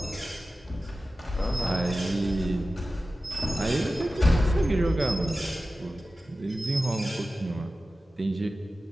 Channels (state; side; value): normal; both; correlation 0.95